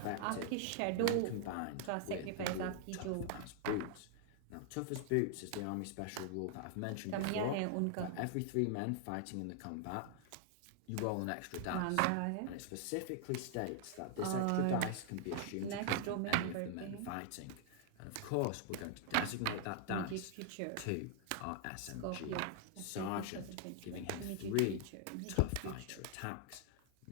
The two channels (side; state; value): both; different; correlation 0.00